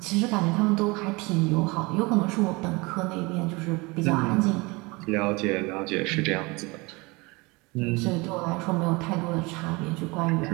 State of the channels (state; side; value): quieter; left; 25.3 dB